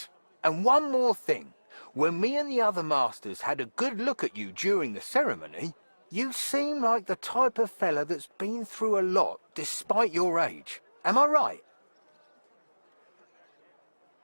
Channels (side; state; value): both; inverted; correlation -1.00